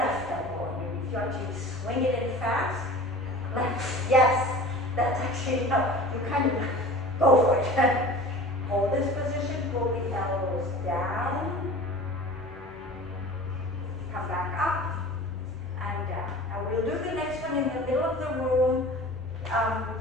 elbow. If you actually swing it in fast. Left. Yes. That's actually no. You kind of go for it. Hold this position, pull the elbows down, come back up, and down. Now we'll do the next one in the middle of the room.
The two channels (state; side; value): normal; both; correlation 0.40